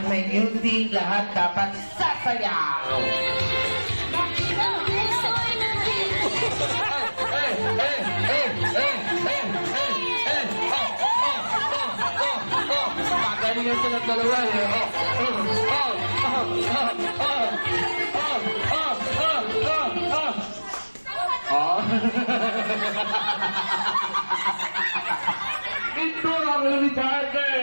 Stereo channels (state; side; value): inverted; both; correlation -1.00